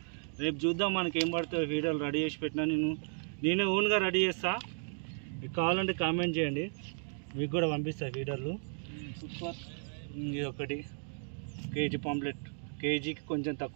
రేపు చూద్దాం మనకి ఏం పడుతుందో. ఫీడర్లు రెడీ చేసి పెట్టినా, నేనే ఓన్గా రెడీ చేస్తా. మీకు కావాలంటే కామెంట్ చేయండి, మీకు కూడా పంపిస్తా ఫీడర్లు. ఇది ఒకటి కేజీ పాంప్లెట్, కేజీకి కొంచెం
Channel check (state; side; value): silent; left; 55 dB below the other